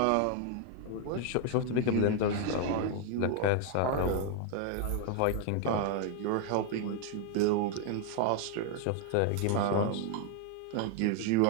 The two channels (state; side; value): different; both; correlation 0.00